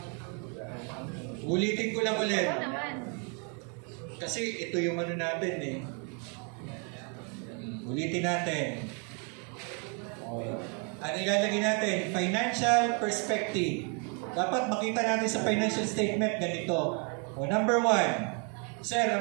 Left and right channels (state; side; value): quieter; left; 37.4 dB